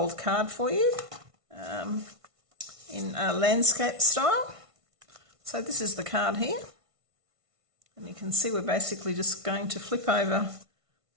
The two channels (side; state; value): left; late; 1.5 ms